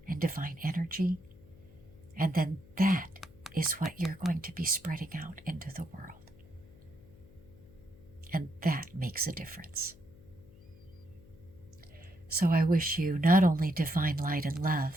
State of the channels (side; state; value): left; noise; hum, 23 dB below the sound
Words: and divine energy. And then that is what you're going to be spreading out into the world. And that makes a difference. So I wish you not only divine light and